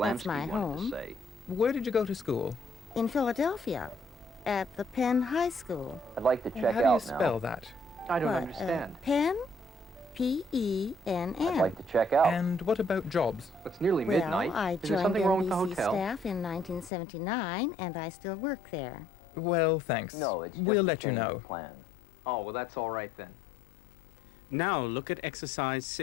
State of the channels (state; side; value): drops out; right; at 16.9 s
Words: Vlansky my wanted home. to say. Where did you go to school? In Philadelphia, at the Penn High School. I'd like to check How do you out spell now. that? I don't What, understand. Penn? Penn. I'd like to check out. And what about jobs? It's nearly Well, midnight. I Is there joined something wrong with the NBC hotel? staff in 1979, and I still work there. Well, thanks. No, it's just We'll a let you change know. of plan. Oh, well, that's all right, then. Now look at exercise